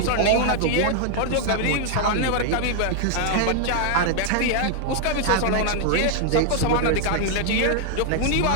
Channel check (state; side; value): different; both; correlation 0.00